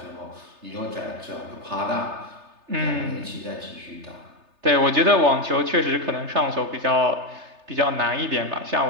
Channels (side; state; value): left; late; 3.3 ms